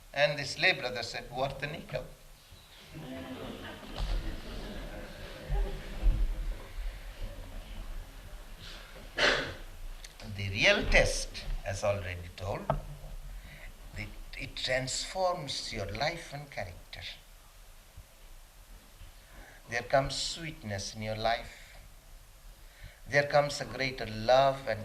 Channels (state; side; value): identical; both; correlation 1.00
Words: And this lay brother said, worth the nickel. The real test, as already told, it transforms your life and character. There comes sweetness in your life. There comes a greater love